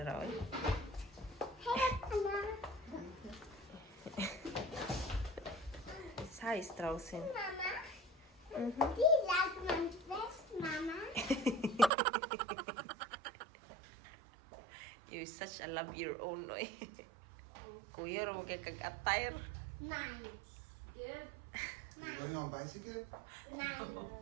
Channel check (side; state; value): left; drops out; at 11.9 s